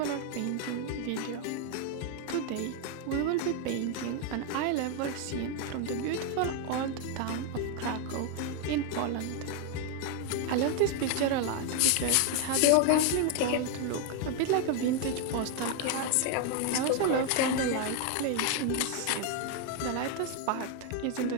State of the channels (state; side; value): different; both; correlation 0.01